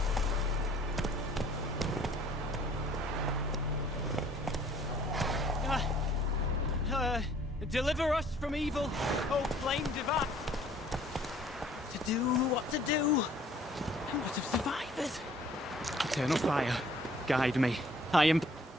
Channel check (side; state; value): both; normal; correlation 0.56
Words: Deliver us from evil, O flame divine. To do what to do, and what of survivors? Eternal fire, guide me. I am...